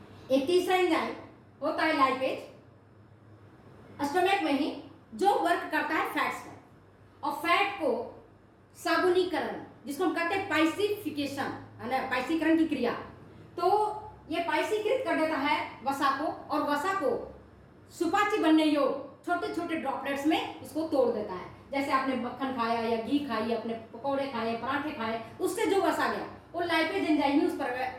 एक तीसरा एंजाइम होता है लाइपेज, स्टोमक में ही, जो वर्क करता है फैट्स पर, और फैट को साबुनीकरण, जिसको हम कहते हैं पाइसिफिकेशन, है ना, पाइसीकरण की क्रिया, तो ये पाइसीकृत कर देता है वसा को, और वसा को सुपाच्य बनने योग्य छोटे छोटे ड्रॉपलेट्स में इसको तोड़ देता है। जैसे आपने मक्खन खाया या घी खाई, अपने पकौड़े खाए, पराठे खाए, उससे जो वसा गया वो लाइपेज एंजाइम ही उस पर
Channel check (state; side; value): identical; both; correlation 1.00